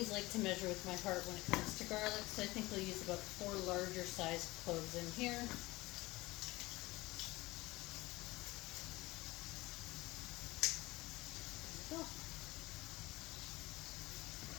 like to measure with my heart when it comes to garlic, so I think we'll use about 4 larger sized cloves in here. There we go.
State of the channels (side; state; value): right; quieter; 20.5 dB